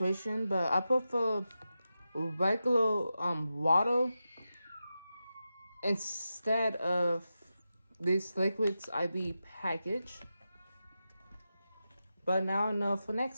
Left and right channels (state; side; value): inverted; both; correlation -0.90